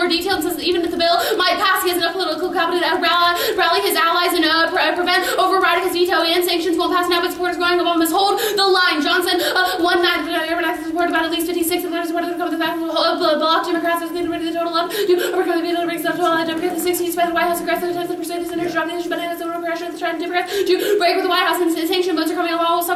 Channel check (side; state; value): both; identical; correlation 1.00